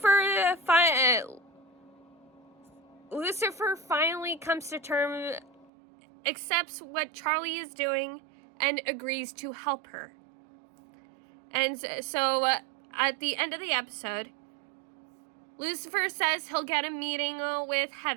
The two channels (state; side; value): drops out; left; at 5.7 s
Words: finally comes to terms, accepts what Charlie is doing, and agrees to help her. And so at the end of the episode, Lucifer says he'll get a meeting with